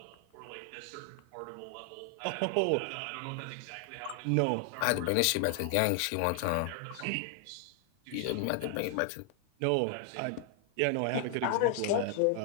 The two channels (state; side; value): different; both; correlation 0.00